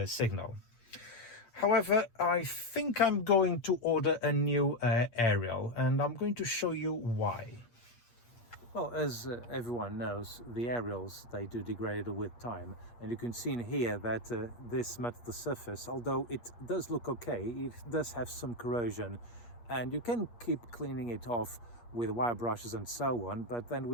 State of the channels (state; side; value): late; right; 8.4 ms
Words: signal. However, I think I'm going to order a new aerial, and I'm going to show you why. Well, as everyone knows, the aerials, they do degrade with time, and you can see in here that this metal surface, although it does look okay, it does have some corrosion, and you can keep cleaning it off with wire brushes and so on, but then